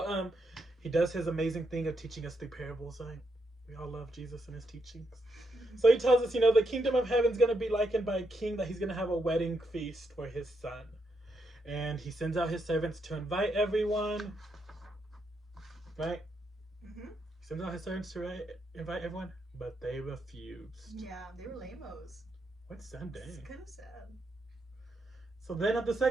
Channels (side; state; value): both; normal; correlation 0.80